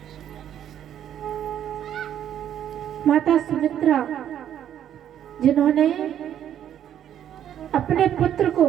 माता सुमित्रा, जिन्होंने अपने पुत्र को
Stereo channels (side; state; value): left; quieter; 10.3 dB